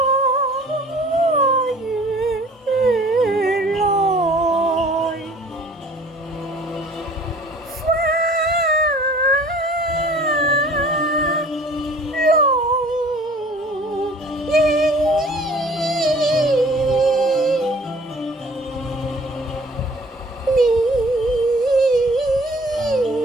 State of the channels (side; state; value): both; normal; correlation 0.51